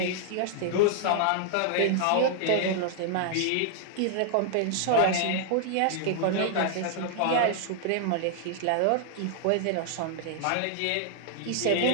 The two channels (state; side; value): different; both; correlation 0.00